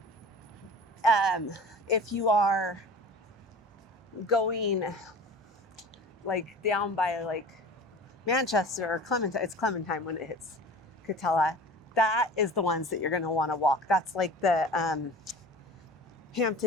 If you are going like down by like Manchester or Clementine, it's Clementine when it hits Katella, that is the ones that you're going to want to walk. That's like the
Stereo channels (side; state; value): both; normal; correlation 0.39